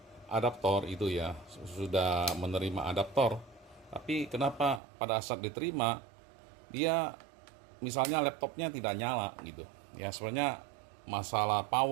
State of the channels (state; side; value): drops out; left; at 4.8 s